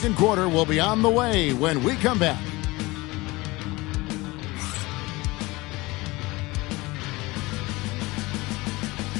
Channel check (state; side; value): quieter; right; 21.9 dB